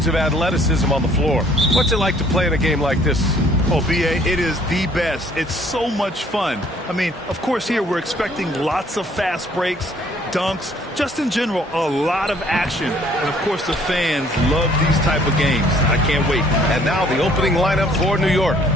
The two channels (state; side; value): normal; both; correlation 0.60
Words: of athleticism on the floor. What's it like to play in a game like this? Oh, B.A., it is the best. It's so much fun. I mean, of course, here we're expecting lots of fast breaks, dunks, just in general, a lot of action. And, of course, the fans love these type of games. I can't wait. And now the opening lineup for New York.